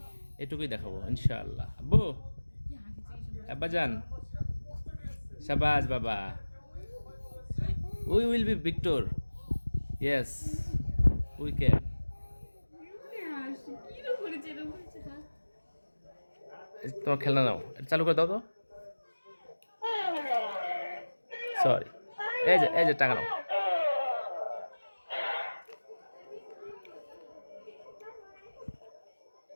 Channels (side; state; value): both; inverted; correlation -1.00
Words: এটুকুই দেখাবো ইনশাআল্লাহ আব্বু আব্বাজান শাবাশ বাবা we will be Victor yes we can তোমার খেলনা নাও এটা চালু করে দাও তো সরি এই যে টাকা নাও